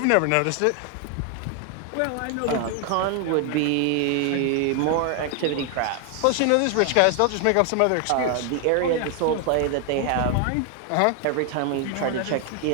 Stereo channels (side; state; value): both; different; correlation 0.00